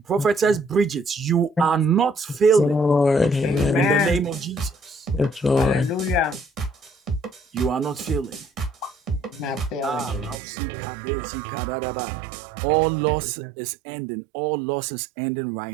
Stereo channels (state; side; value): drops out; left; at 10.4 s